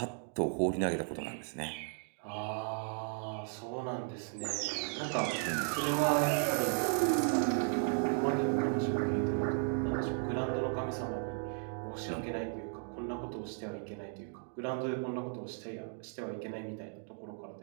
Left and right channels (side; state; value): left; silent; 54 dB below the other